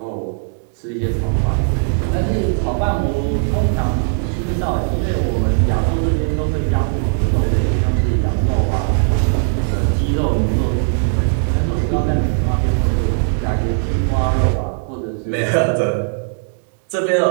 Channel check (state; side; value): silent; left; digital silence